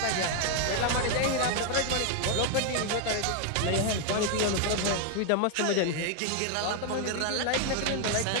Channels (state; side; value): different; both; correlation 0.00